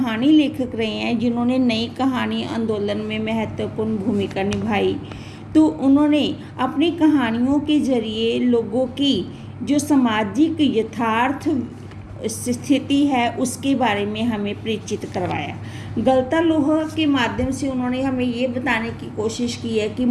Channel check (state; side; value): identical; both; correlation 1.00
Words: लेखक रहे हैं जिन्होंने नई कहानी आंदोलन में महत्वपूर्ण भूमिका निभाई। तो उन्होंने अपनी कहानियों के जरिए लोगों की जो सामाजिक यथार्थ स्थिति है उसके बारे में हमें परिचित करवाया। गलता लोहा के माध्यम से उन्होंने हमें ये बताने की कोशिश की है कि